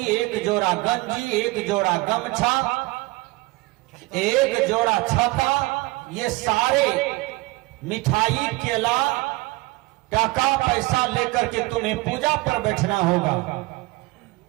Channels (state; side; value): quieter; left; 22.0 dB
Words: 1 जोड़ा गंजी, 1 जोड़ा गमछा, 1 जोड़ा छता, ये सारे मिठाई, केला, टका पैसा लेकर के तुम्हें पूजा पर बैठना होगा।